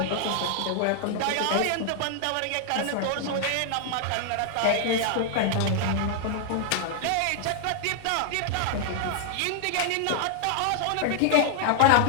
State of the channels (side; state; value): both; different; correlation 0.00